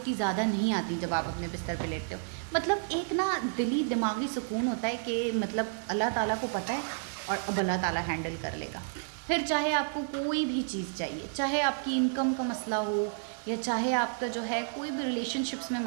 ज़्यादा नहीं आती जब आप अपने बिस्तर पे लेटते हो। मतलब एक ना दिली दिमागी सुकून होता है कि मतलब अल्लाह ताला को पता है और अब अल्लाह ताला हैंडल कर लेगा। फिर चाहे आपको कोई भी चीज़ चाहिए, चाहे आपकी इनकम का मसला हो या चाहे आपका जो है कोई भी रिलेशनशिप्स में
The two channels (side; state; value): left; silent; digital silence